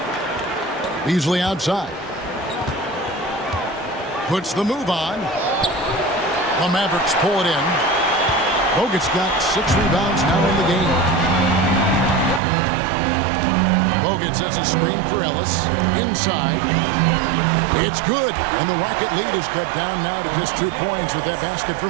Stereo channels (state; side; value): drops out; left; at 12.4 s